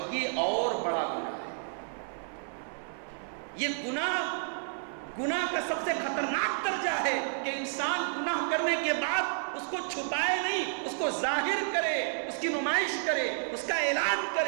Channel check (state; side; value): silent; left; 55 dB below the other